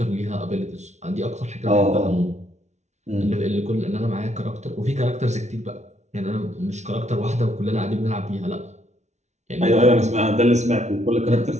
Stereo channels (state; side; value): late; left; 0.33 ms